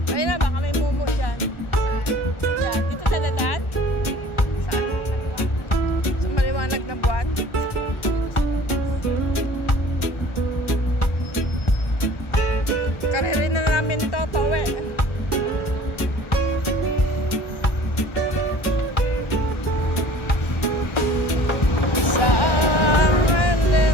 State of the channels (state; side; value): late; right; 1.4 ms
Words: Ayun na, baka may mumu dyan. Yan. Dito sa dadan? Saan? Sa maliwanag na buwan? Karirin na namin to, towe. Silent